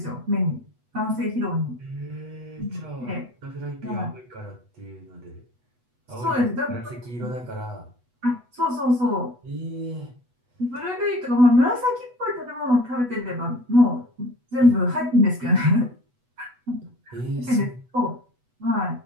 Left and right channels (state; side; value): late; left; 8.2 ms